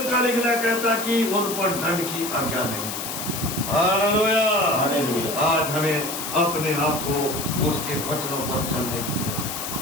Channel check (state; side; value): noise; left; hiss, 6 dB below the sound